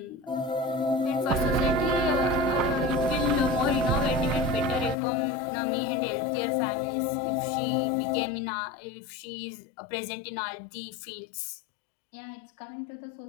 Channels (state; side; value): drops out; right; at 5.0 s